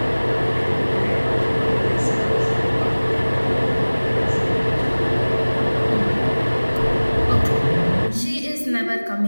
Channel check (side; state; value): both; inverted; correlation -1.00